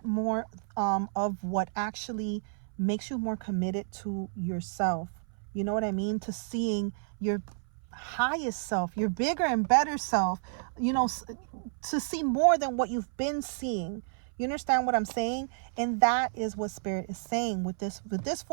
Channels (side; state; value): left; silent; 57 dB below the other